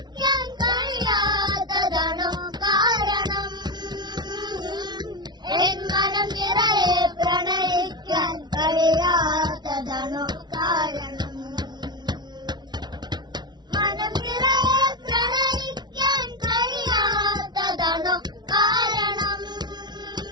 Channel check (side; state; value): left; late; 0.20 ms